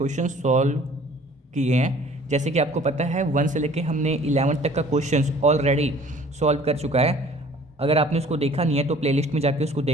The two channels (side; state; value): both; normal; correlation 0.52